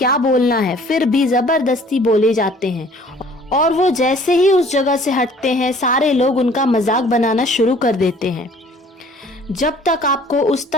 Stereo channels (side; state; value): both; normal; correlation 0.53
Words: बोलना है, फिर भी जबरदस्ती बोले जाते हैं और वो जैसे ही उस जगह से हटते हैं सारे लोग उनका मजाक बनाना शुरू कर देते हैं। जब तक आपको उस